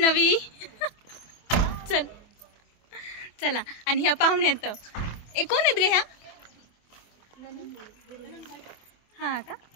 चल चला। आणि ह्या पाहुण्यात कोण आहेत ग ह्या? हा का?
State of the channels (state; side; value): late; right; 24 ms